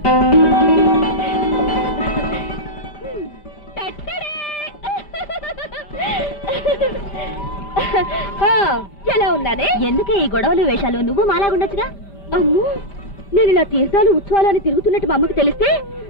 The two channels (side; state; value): right; late; 5.0 ms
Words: ఎలా ఉన్నానే? ఎందుకే ఈ గొడవలు వేషాలు? నువ్వు మాలాగుండొచ్చుగా. అమ్మో, నేను ఇలా తీర్థాలు ఉత్సవాలు అని తిరుగుతున్నట్టు మా అమ్మకి తెలిస్తే